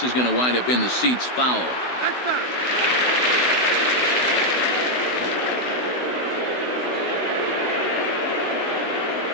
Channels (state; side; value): late; right; 16 ms